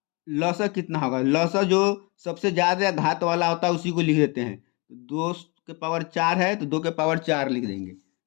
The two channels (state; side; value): quieter; right; 29.5 dB